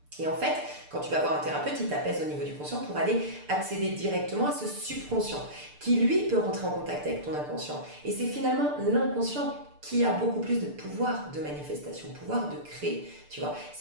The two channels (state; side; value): late; left; 6.8 ms